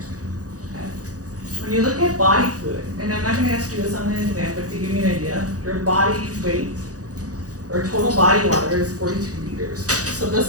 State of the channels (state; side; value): late; left; 0.67 ms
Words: Okay. When you look at body fluid, and I'm not going to ask you this on the exam, but to give you an idea, your body weight or total body water is 42 liters. So